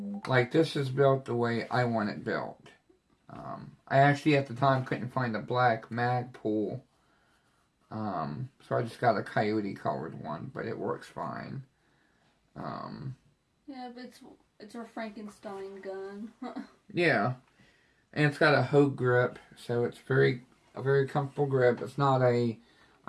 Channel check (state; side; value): identical; both; correlation 1.00